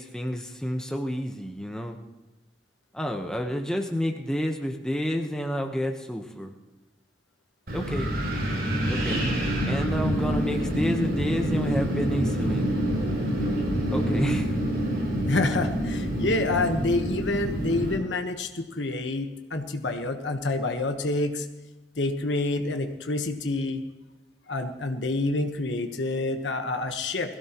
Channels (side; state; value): both; normal; correlation 0.65